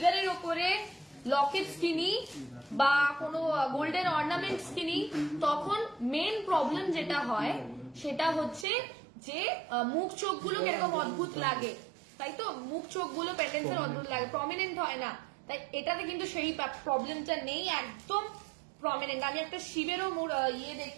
ওপরে লকেটস কিনি বা কোনো গোল্ডেন অর্নামেন্টস কিনি, তখন মেন প্রবলেম যেটা হয় সেটা হচ্ছে যে মুখ চোখগুলো কিরকম অদ্ভুত লাগে, তাই তো? মুখ চোখগুলো পেন্ডেন্টসের অদ্ভুত লাগে, প্রমিনেন্ট হয় না। তাই এটাতে কিন্তু সেই প্রবলেমটা নেই, একদম প্রমিনেন্ট। আমি একটা শিবেরও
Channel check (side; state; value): left; drops out; at 8.7 s